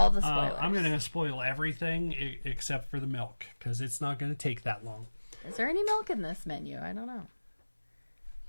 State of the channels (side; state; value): both; inverted; correlation -1.00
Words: the spoilers. I'm going to spoil everything except for the milk, because it's not going to take that long. Is there any milk in this menu? I don't know.